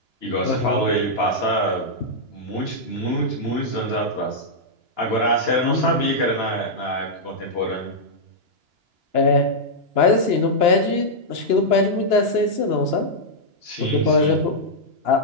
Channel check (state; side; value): late; left; 2.9 ms